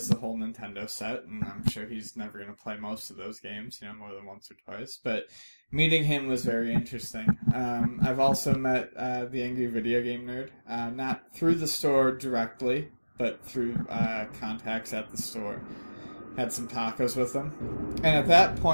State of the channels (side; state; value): both; inverted; correlation -1.00